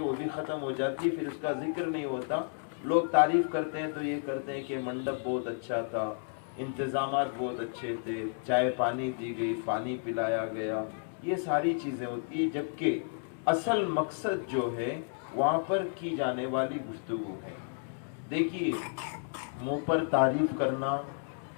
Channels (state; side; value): silent; right; digital silence